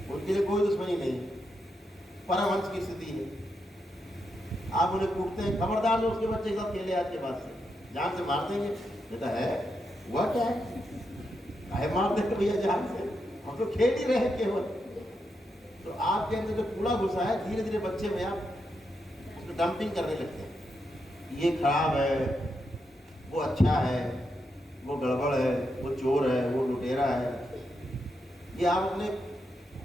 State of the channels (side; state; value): both; normal; correlation 0.84